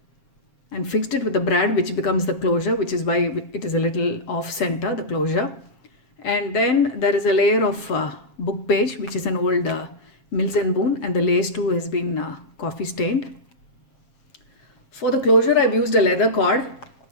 and fixed it with the brad, which becomes the closure, which is why it is a little off center, the closure. And then there is a layer of book page, which is an old Mills and Boon, and the lace too has been coffee stained. For the closure I've used a leather cord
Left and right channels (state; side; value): late; right; 7.4 ms